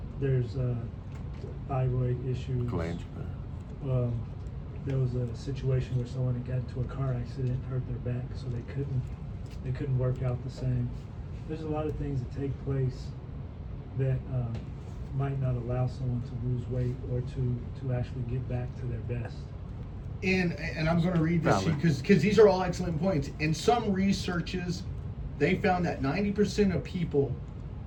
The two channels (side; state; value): both; identical; correlation 1.00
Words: There's thyroid issues. Glange. There was a situation where someone had got into a car accident, hurt their back, so they couldn't work out the same. There's a lot of things that take place that might not allow someone to lose weight or to actually get back to their best. And I'm going to read this Valid. because these are all excellent points. In some researches, they found that 90% of people